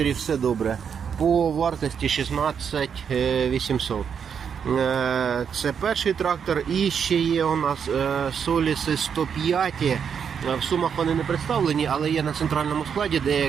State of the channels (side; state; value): left; quieter; 7.2 dB